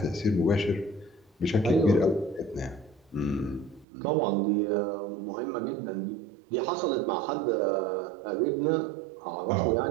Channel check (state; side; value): drops out; left; at 3.9 s